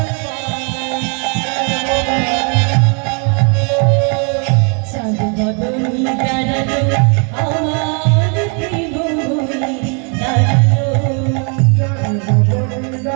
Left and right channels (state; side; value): quieter; left; 38.0 dB